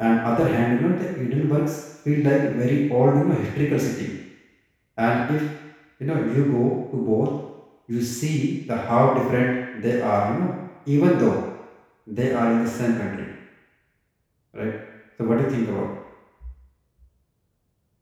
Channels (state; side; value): identical; both; correlation 1.00